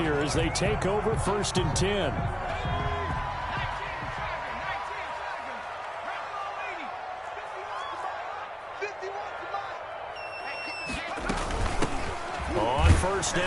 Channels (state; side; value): identical; both; correlation 1.00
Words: as they take over 1st and 10. On 1st